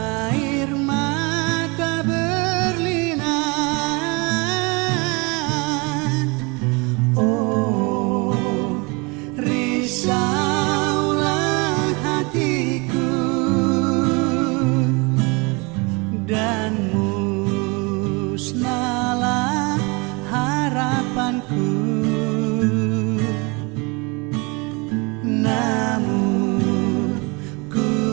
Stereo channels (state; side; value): quieter; left; 28.6 dB